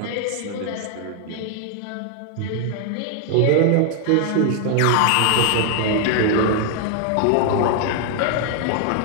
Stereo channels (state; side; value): different; both; correlation 0.00